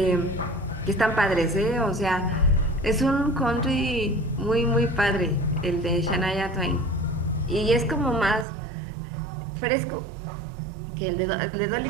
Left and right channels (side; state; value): left; drops out; at 8.5 s